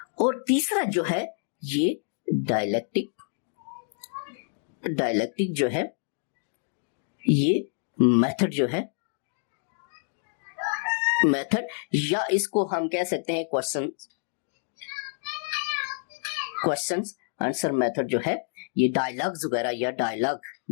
और तीसरा जो है ये डायलेक्टिक, डायलेक्टिक जो है ये मेथड जो है, मेथड, या इसको हम कह सकते हैं क्वेश्चंस आंसर मेथड जो है, ये डायलॉग्स वगैरह, या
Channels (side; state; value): right; silent; digital silence